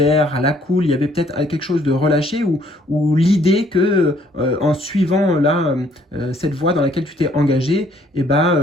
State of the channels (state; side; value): normal; both; correlation 0.63